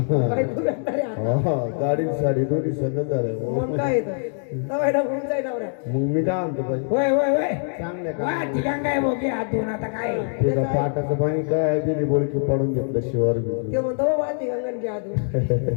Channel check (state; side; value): silent; right; 63 dB below the other